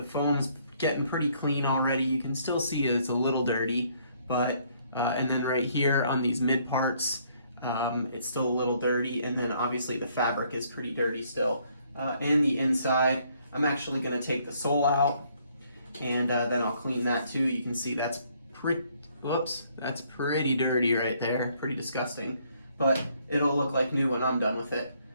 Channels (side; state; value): both; inverted; correlation -0.66